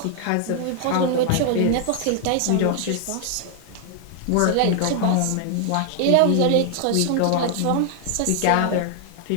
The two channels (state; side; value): different; both; correlation 0.00